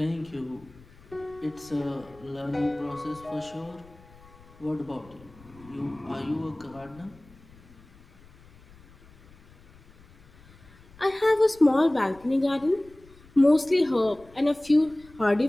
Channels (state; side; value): noise; left; rumble, 25 dB below the sound